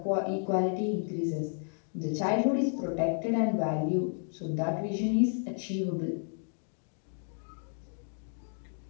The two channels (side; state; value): right; silent; 56 dB below the other